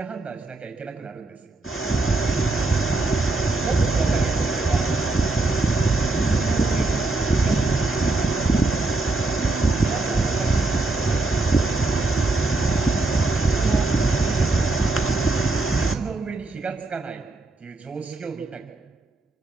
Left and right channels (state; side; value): quieter; left; 3.1 dB